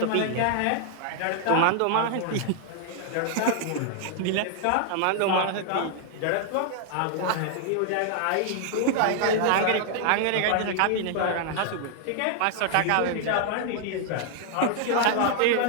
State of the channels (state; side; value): different; both; correlation 0.00